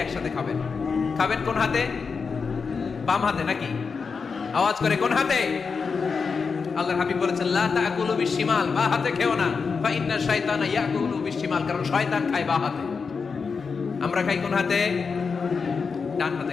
একসাথে খাবেন। খাবেন কোন হাতে? বাম হাতে নাকি? আওয়াজ করে কোন হাতে? আল্লাহর হাবিব বলেছেন, লা তাকুলু বিশিমাল, বা হাতে খেও না, ফা ইন্না শাইতানা ইয়াকুলু বিশিমাল, কারণ শয়তান খায় বা হাতে। আমরা খাই কোন হাতে? ডান হাতে।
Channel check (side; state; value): right; quieter; 5.2 dB